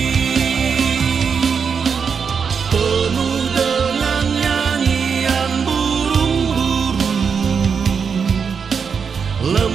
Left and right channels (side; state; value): left; quieter; 6.2 dB